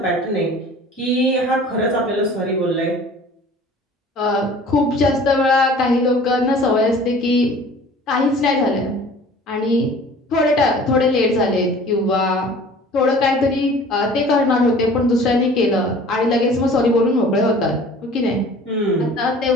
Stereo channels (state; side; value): normal; both; correlation 0.46